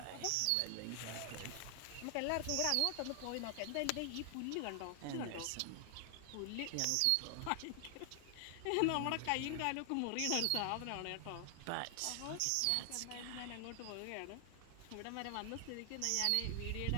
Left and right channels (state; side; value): different; both; correlation 0.00